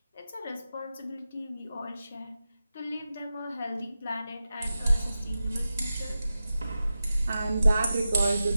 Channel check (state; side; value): inverted; both; correlation -0.92